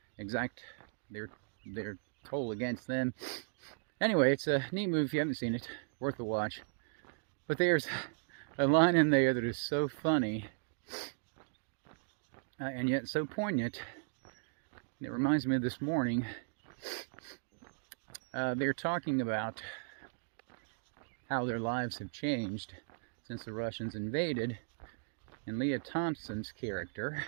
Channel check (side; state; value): left; silent; digital silence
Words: exact their toll against them. Anyway, it's a neat movie. If you haven't seen it, worth a watch. But there's a line in there that is so funny and yet so poignant. It reminds me of this morning. They're talking about how their lives have changed since the Russians invaded. And Leah Thompson's character